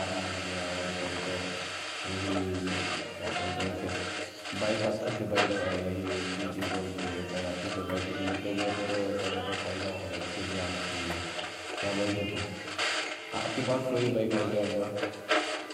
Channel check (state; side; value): identical; both; correlation 1.00